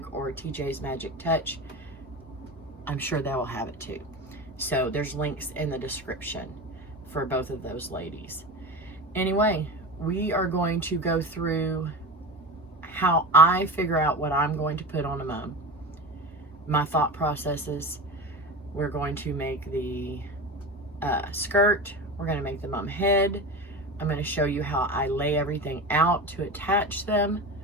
or TJ's Magic Touch. I'm sure they will have it too. So there's links in the description for both of those ladies. Anyway, we are going to go through how I figure out what I'm going to put on a mum, my thought processes. We're going to make the skirt. We're going to make the mum head. I'm going to show you how I lay everything out to attach them,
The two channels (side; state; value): both; normal; correlation 0.28